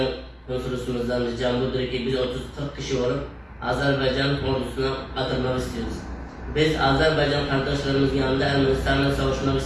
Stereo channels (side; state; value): both; identical; correlation 1.00